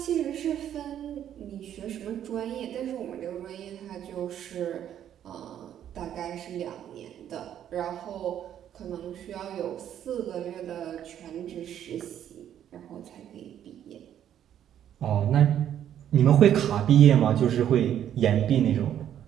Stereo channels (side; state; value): left; quieter; 10.3 dB